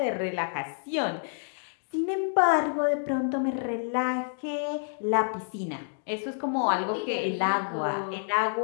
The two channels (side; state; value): right; silent; digital silence